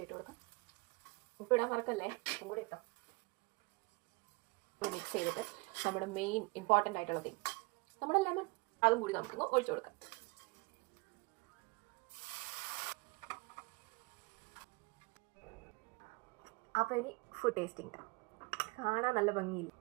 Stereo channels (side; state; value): left; quieter; 27.7 dB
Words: ഇട്ട് കൊടുക്കാം. ഉപ്പിടാൻ മറക്കല്ലേ, ഉപ്പും കൂടി ഇട്ടോ. മിക്സ് ചെയ്തിട്ട് നമ്മുടെ മെയിൻ ഇമ്പോർട്ടൻ്റ് ആയിട്ടുള്ള തിങ് നമ്മുടെ ലെമൺ അതും കൂടി നമുക്കൊന്ന് ഒഴിച്ചു കൊടുക്കാം. അപ്പോൾ ഇനി ഫുഡ് ടേസ്റ്റിംഗ്. കാണാൻ നല്ല ഭംഗിയില്ല.